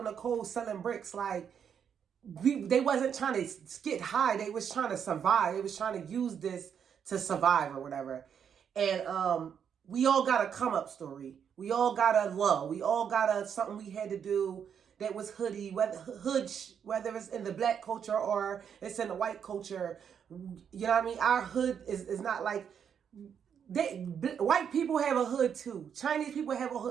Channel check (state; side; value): quieter; left; 7.8 dB